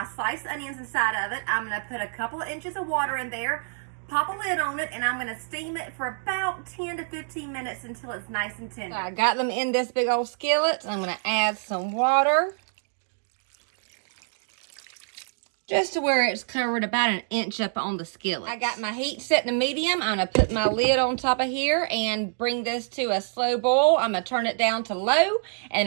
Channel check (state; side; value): silent; left; digital silence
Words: sliced onions inside of it. I'm going to put a couple of inches of water in there, pop a lid on it, and I'm going to steam it for about 10 to 15 minutes until it's nice and tender. I got them in this big old skillet. I'm going to add some water, just to where it's covered about an inch up on the skillet. I got my heat set to medium. I'm going to put my lid on top of here and bring this to a slow boil. I'm going to turn it down to low,